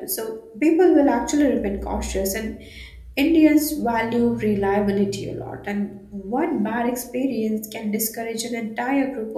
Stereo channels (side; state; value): both; identical; correlation 1.00